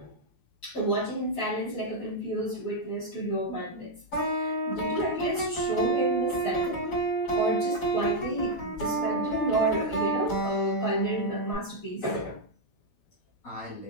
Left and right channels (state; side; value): late; right; 12 ms